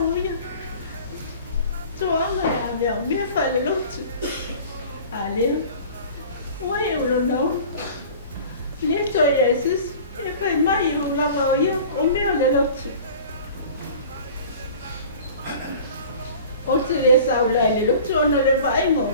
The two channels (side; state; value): both; inverted; correlation -0.43